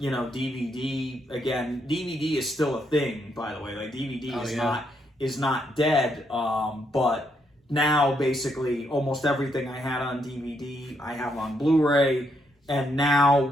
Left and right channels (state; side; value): normal; both; correlation 0.77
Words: DVD, again, DVD is still a thing, by the way. Like, DVD is not dead, but now basically almost everything I had on DVD, I have on Blu-ray, and now